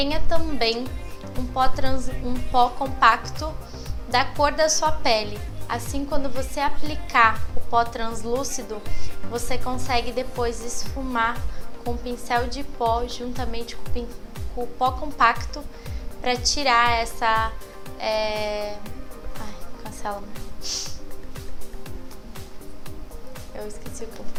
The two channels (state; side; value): identical; both; correlation 1.00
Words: também um pó compacto da cor da sua pele. Assim, quando você aplicar o pó translúcido, você consegue depois esfumar com o pincel de pó juntamente com o pó compacto para tirar essa... cancela. Eu esqueci o